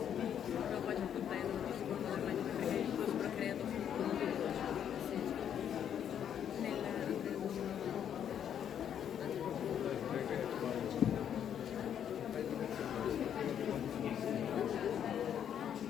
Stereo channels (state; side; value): quieter; right; 9.2 dB